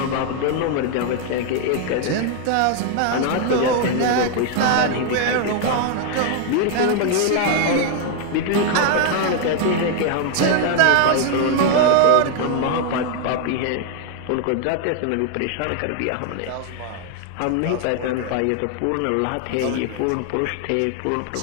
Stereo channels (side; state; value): both; different; correlation 0.00